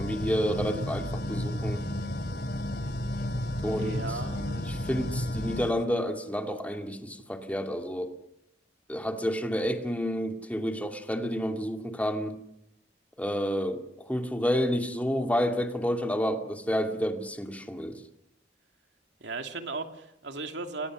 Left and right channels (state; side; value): normal; both; correlation 0.79